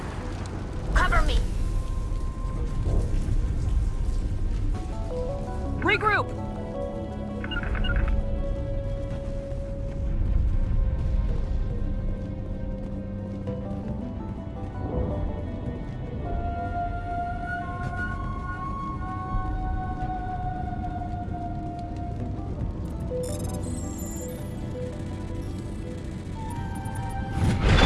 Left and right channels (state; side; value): identical; both; correlation 1.00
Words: Cover me! Regroup!